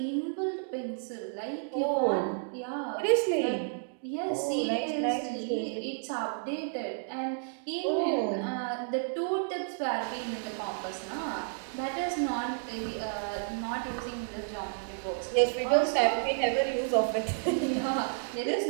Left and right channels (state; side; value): silent; left; digital silence